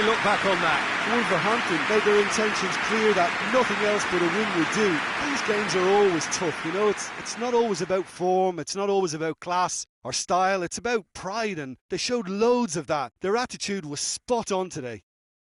look back on that? Wolverhampton made their intentions clear that nothing else but a win would do. These games are always tough, you know, it's not always about form, it's not always about class or style, it's about pride, and they showed loads of that. Their attitude was spot on today.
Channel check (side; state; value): both; identical; correlation 1.00